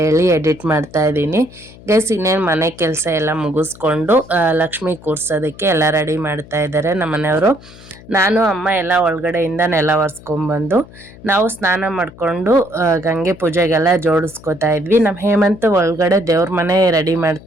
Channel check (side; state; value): left; noise; hum, 21 dB below the sound